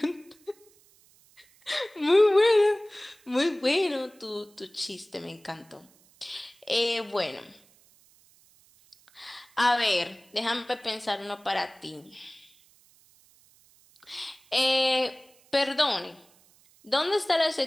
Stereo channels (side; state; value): right; noise; hiss, 30 dB below the sound